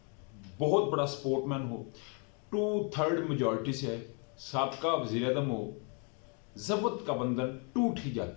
बहुत बड़ा स्पोर्टमैन हो, 2/3 मेजॉरिटी से है, साबका वज़ीर आज़म हो, ज़ब्त का बंधन टूट ही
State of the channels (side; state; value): right; quieter; 35.9 dB